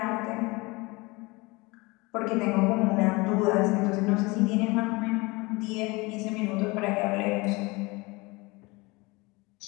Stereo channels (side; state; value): right; quieter; 24.5 dB